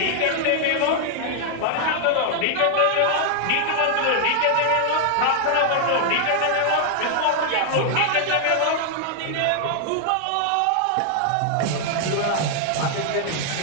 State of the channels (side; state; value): both; different; correlation 0.00